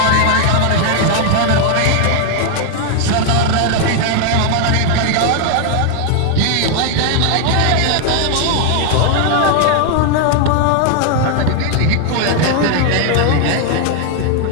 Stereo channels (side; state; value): both; different; correlation 0.00